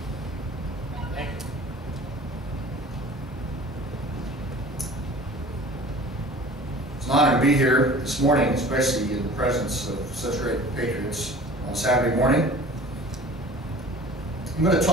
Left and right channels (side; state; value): both; normal; correlation 0.44